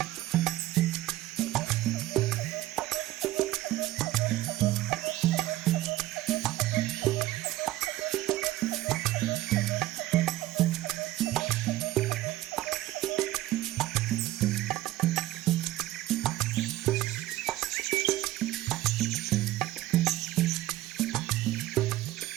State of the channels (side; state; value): left; quieter; 15.8 dB